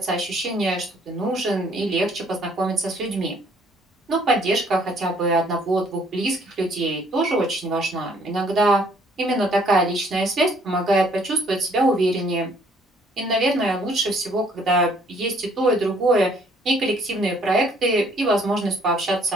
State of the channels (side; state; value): both; normal; correlation 0.62